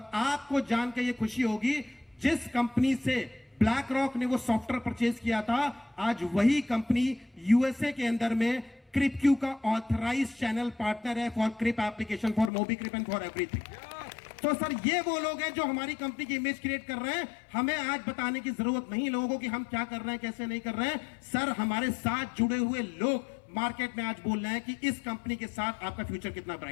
आपको जान के ये खुशी होगी, जिस कंपनी से ब्लैक रॉक ने वो सॉफ्टवेयर परचेज किया था, आज वही कंपनी यूएसए के अंदर में क्रिपक्यू का ऑथराइज्ड चैनल पार्टनर है for Crip application, for MobiCrip and for everything. तो सर ये वो लोग हैं जो हमारी कंपनी की इमेज क्रिएट कर रहे हैं। हमें आज बताने की जरूरत नहीं लोगों को कि हम क्या कर रहे हैं, कैसे नहीं कर रहे हैं। सर हमारे साथ जुड़े हुए लोग मार्केट में आज बोल रहे हैं कि इस कंपनी के साथ आपका फ्यूचर कितना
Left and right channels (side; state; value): right; drops out; at 12.5 s